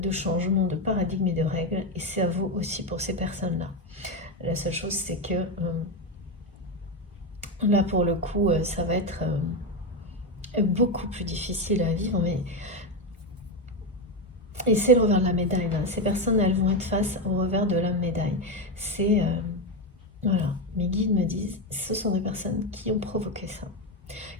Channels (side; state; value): both; normal; correlation 0.11